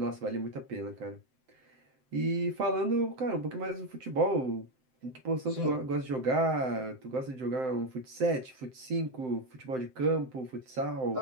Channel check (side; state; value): left; late; 7.8 ms